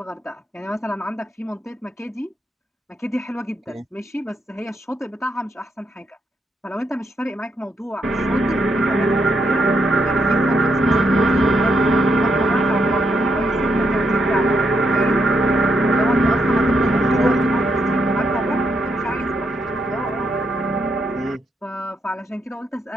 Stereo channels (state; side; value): normal; both; correlation 0.79